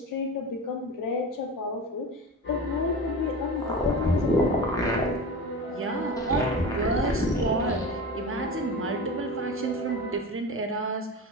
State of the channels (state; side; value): normal; both; correlation 0.29